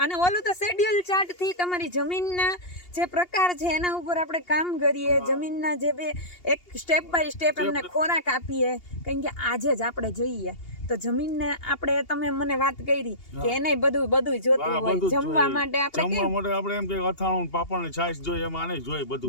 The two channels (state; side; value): late; right; 2.8 ms